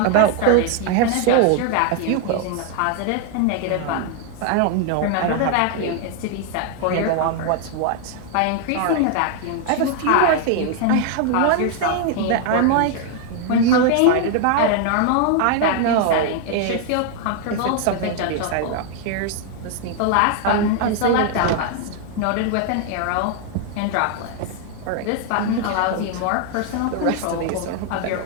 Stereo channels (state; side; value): different; both; correlation 0.00